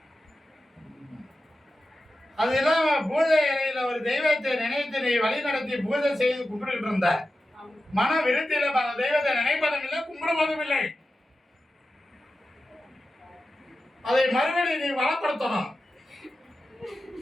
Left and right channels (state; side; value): normal; both; correlation 0.92